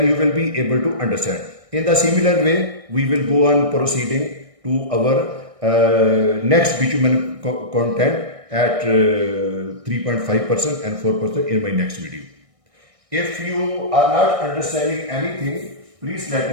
you will be able to understand. In the similar way, we will go on proceeding to our next bitumen content at 3.5% and 4% in my next video. If you are not understanding anything, please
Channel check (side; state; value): left; late; 1.6 ms